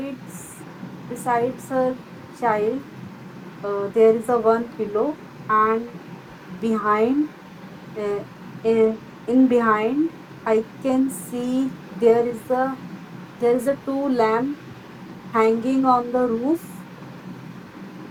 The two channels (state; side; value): identical; both; correlation 1.00